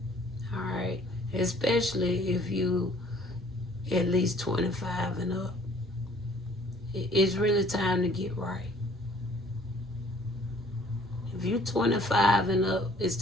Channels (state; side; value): normal; both; correlation 0.57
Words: All right? Especially if you at least 25 and up. It's really time to get right. If you're 25 and up, it's